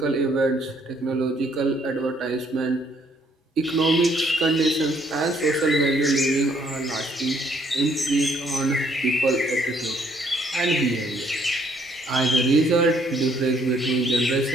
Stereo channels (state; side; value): normal; both; correlation 0.66